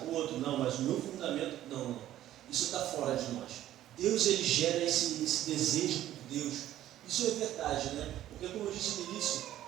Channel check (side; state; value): left; quieter; 13.0 dB